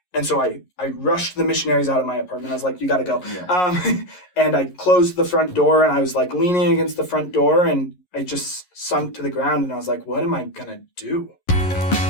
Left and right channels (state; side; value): late; right; 11 ms